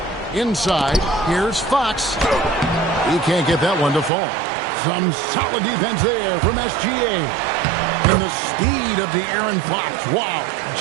Inside, here's Fox. He can't get that one to fall. Some solid defense there from SGA. And the speed of De'Aaron Fox. Wow.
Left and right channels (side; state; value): left; drops out; at 4.1 s